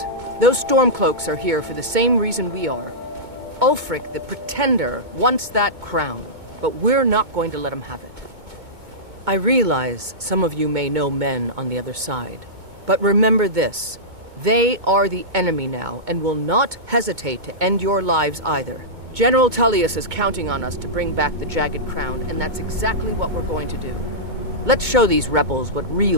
Those Stormcloaks are here for the same reason we are. Ulfric, the Pretender, wants that crown, but we're not going to let him have it. I realize some of you may know men on the other side, but remember this. They are the enemy now, and will not hesitate to end your lives either. General Tullius is counting on us to bring back the Jagged Crown, and that's exactly what we're going to do. Let's show these rebels what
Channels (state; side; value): late; left; 2.2 ms